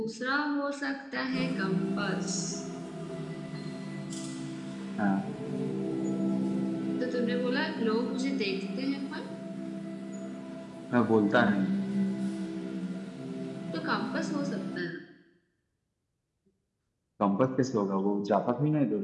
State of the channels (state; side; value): identical; both; correlation 1.00